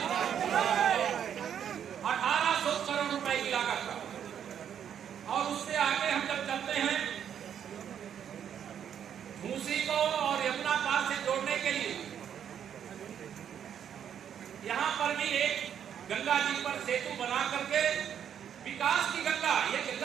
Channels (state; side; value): quieter; left; 8.9 dB